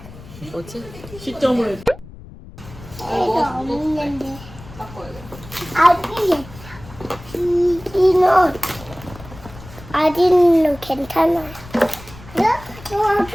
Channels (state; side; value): noise; left; rumble, 18 dB below the sound